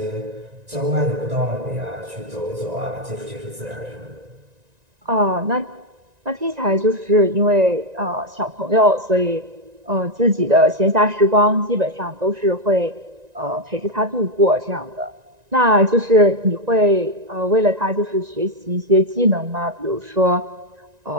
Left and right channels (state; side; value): late; left; 1.9 ms